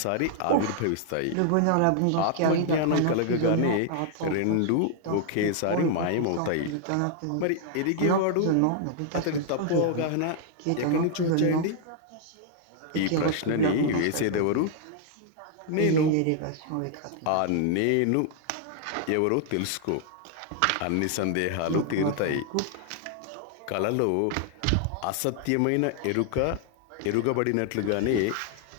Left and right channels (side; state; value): both; different; correlation 0.00